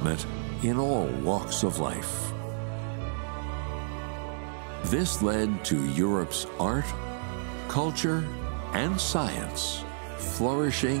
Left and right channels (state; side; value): silent; left; digital silence